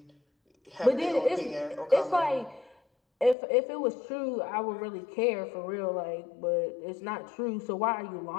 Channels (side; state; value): right; drops out; at 3.4 s